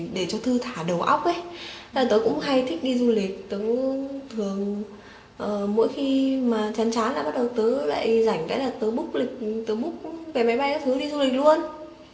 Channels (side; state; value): both; identical; correlation 1.00